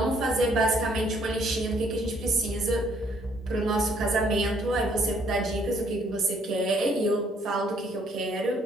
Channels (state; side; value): normal; both; correlation 0.66